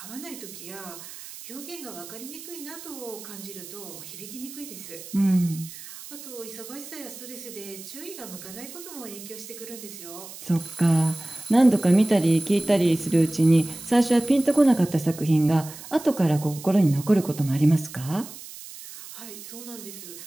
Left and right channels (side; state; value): right; noise; hiss, 14 dB below the sound